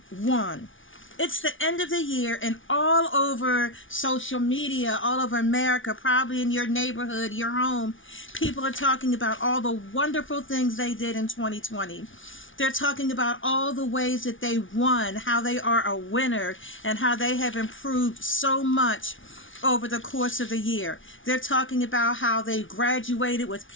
won. It's the end of the year, and all over social media, all over America, probably in your neighborhood, your home, people are talking about all the wonderful things they did in 2020. They're talking about all the ways that they won, how they are a winner, and how they have improved so much over the course of the year. They're talking about how they graduated with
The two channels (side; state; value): right; late; 0.57 ms